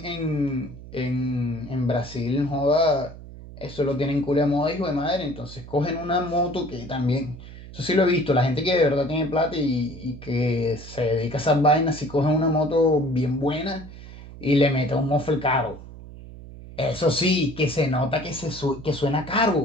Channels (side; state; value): right; noise; hum, 15 dB below the sound